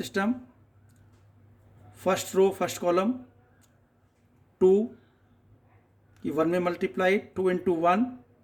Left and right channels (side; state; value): both; identical; correlation 1.00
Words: first row first column 2 की 1 में multiply, 2 into 1